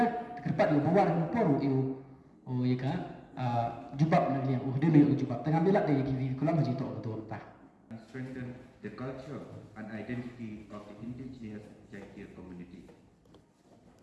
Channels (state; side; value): identical; both; correlation 1.00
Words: kerpat yo bawar ko poru eu oh ya ka jubab na liang dia yo jubab tengah belak dia kiwi kulang haji tok betul tah and strengthen the culture and identity of the indigenous Jaitia community.